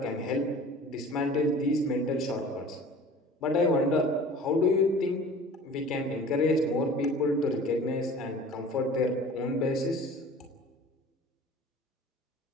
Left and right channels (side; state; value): both; normal; correlation 0.44